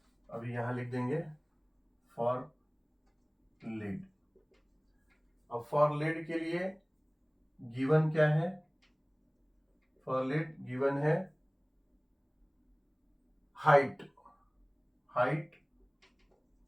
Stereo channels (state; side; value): identical; both; correlation 1.00